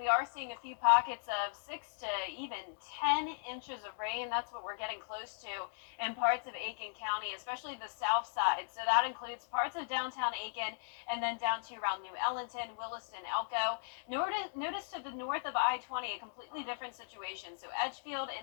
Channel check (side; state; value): right; silent; digital silence